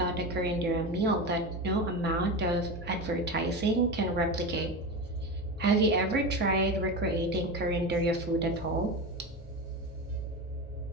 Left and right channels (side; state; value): both; normal; correlation 0.22